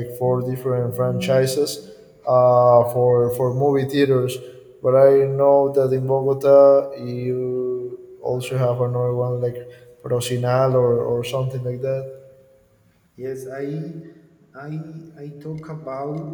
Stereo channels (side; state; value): both; identical; correlation 1.00